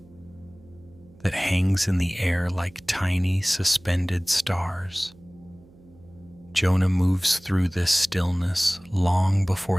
that hangs in the air like tiny, suspended stars. Jonah moves through this stillness long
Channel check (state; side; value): noise; right; hum, 26 dB below the sound